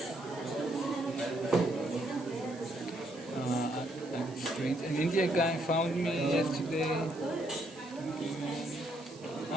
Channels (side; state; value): right; noise; hiss, 22 dB below the sound